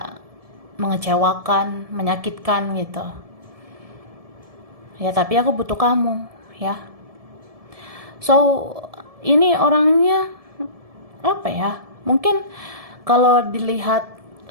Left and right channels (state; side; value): late; left; 1.7 ms